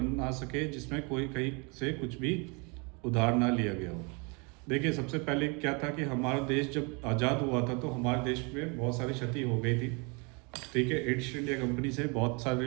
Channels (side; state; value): left; quieter; 31.7 dB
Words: सके जिसमें कोई कहीं से कुछ भी उधार ना लिया गया हो। देखिए, सबसे पहले क्या था कि हमारा देश जब आज़ाद हुआ था तो हमारे देश में बहुत सारी क्षति हो गई थी। ठीक है, ईस्ट इंडिया कंपनी से बहुत